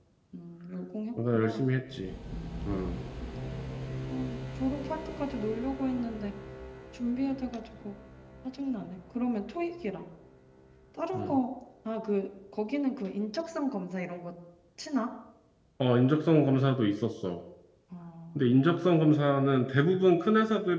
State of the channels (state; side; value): identical; both; correlation 1.00